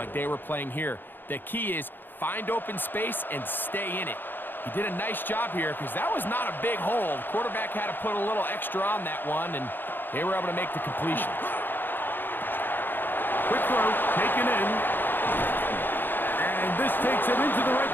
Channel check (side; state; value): right; late; 0.095 ms